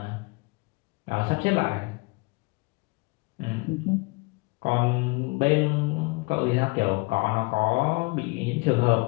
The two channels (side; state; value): right; quieter; 27.5 dB